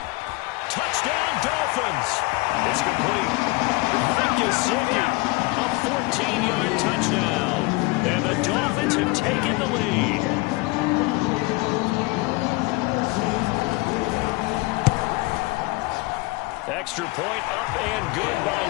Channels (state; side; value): quieter; right; 23.7 dB